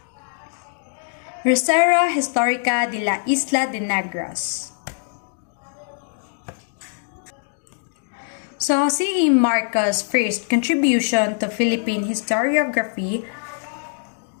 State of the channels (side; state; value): right; silent; digital silence